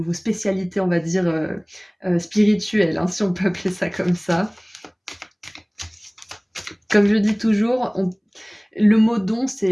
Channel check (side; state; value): both; identical; correlation 1.00